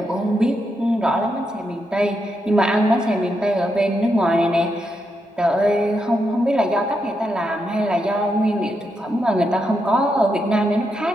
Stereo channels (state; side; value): normal; both; correlation 0.83